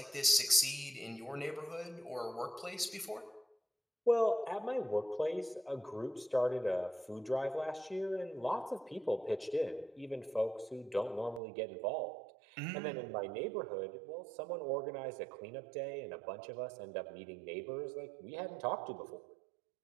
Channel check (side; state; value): left; drops out; at 11.4 s